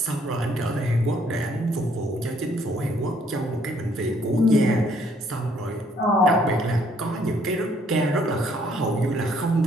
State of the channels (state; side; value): normal; both; correlation 0.65